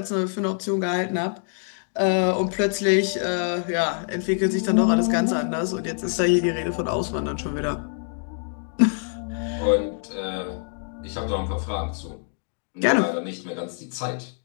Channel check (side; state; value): right; silent; 62 dB below the other